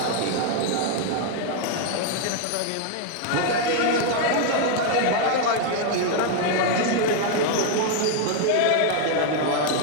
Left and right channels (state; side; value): different; both; correlation 0.00